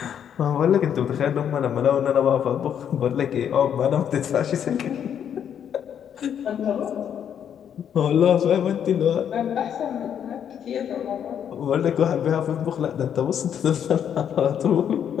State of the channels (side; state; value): right; quieter; 8.8 dB